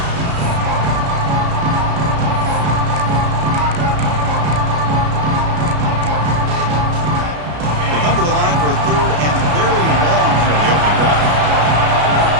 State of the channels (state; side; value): late; left; 33 ms